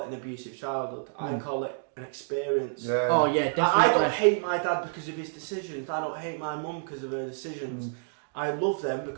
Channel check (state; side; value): silent; left; digital silence